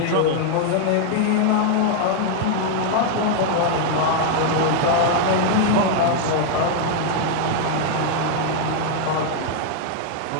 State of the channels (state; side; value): different; both; correlation 0.00